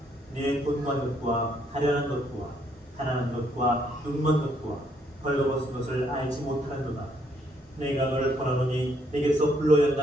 네 돈과 덕과 가련한 것과 가난한 것과 눈먼 것과 벌거벗은 것을 알지 못하는도다. 내가 너를 권하노니 내게서 불로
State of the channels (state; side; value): normal; both; correlation 0.70